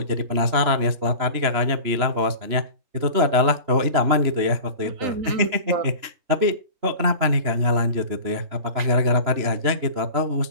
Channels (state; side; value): late; left; 3.0 ms